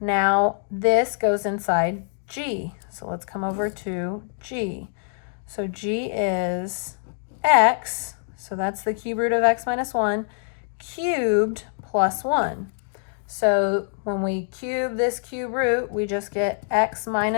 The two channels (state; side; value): silent; right; digital silence